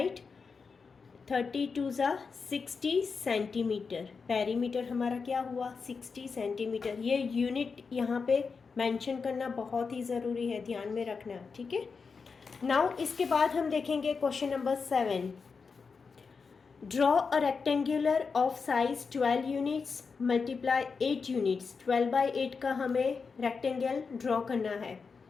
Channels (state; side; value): quieter; right; 5.1 dB